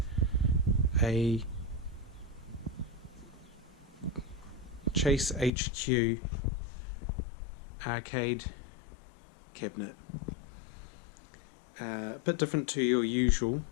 a Chase HQ arcade cabinet. A bit different to your usual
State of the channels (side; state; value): right; drops out; at 5.5 s